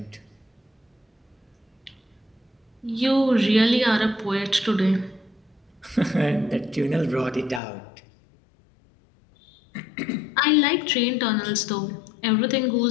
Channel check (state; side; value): drops out; right; at 7.6 s